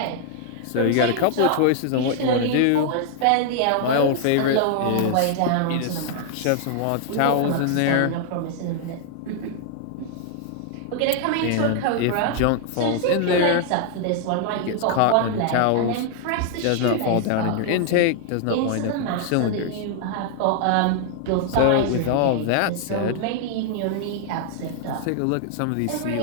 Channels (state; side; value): different; both; correlation 0.00